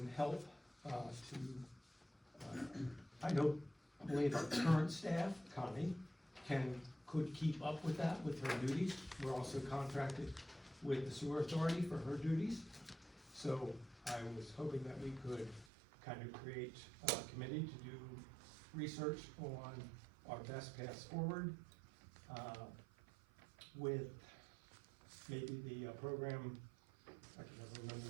help, I know only the current staff, Connie, can could keep up with that with her duties. We're also contracted with the sewer authority for her duties. So I was hoping that we could kind of create a committee to do research on our best paths forward, with maybe the program, I can never remember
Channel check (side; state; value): left; drops out; at 15.7 s